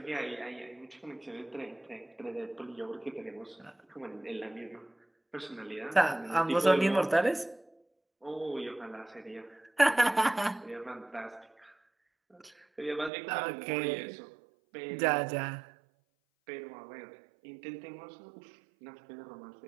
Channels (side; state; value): left; drops out; at 13.1 s